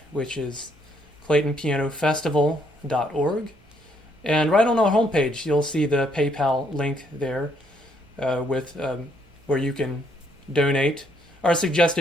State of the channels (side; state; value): both; normal; correlation 0.70